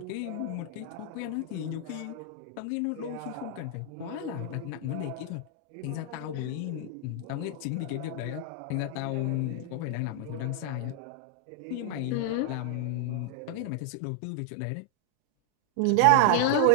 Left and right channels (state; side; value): different; both; correlation 0.00